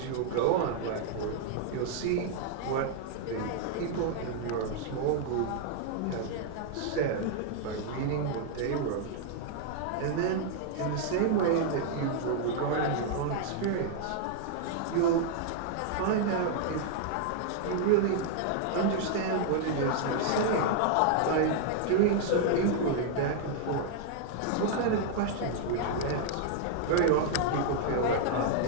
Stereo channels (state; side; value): different; both; correlation -0.01